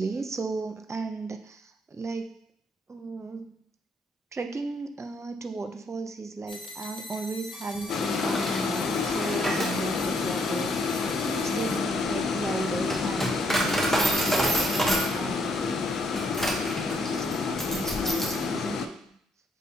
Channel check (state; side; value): normal; both; correlation 0.69